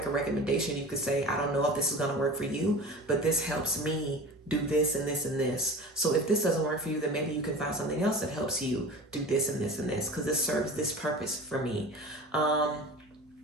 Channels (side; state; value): both; normal; correlation 0.36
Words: a recommendation, you could say, I don't know if this is going to work for you, but this helps me do this and this and this. So if this doesn't work for you, then maybe you can find something else that helps you do this and this and this, because this serves this purpose for me.